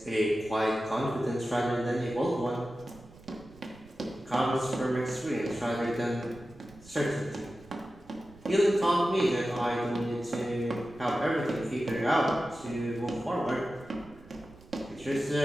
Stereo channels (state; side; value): noise; right; rumble, 22 dB below the sound